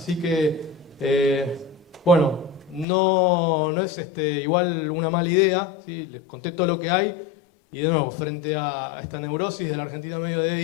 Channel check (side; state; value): right; drops out; at 2.9 s